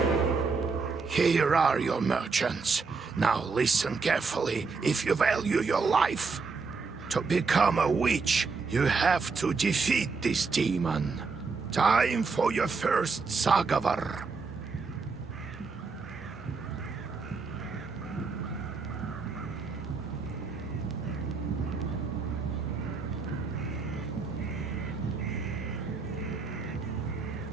Here are your merchants. Now listen carefully if you value your life. To become a witch, you have to defeat this demon. Time for your first Sagavar.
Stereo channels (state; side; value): quieter; left; 4.6 dB